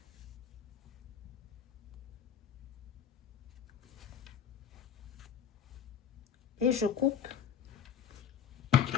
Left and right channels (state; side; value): quieter; right; 8.2 dB